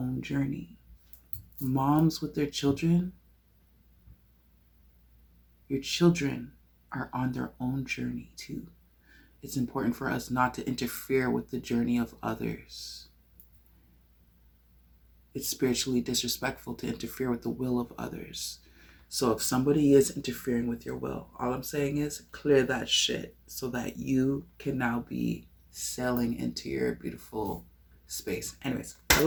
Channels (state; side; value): identical; both; correlation 1.00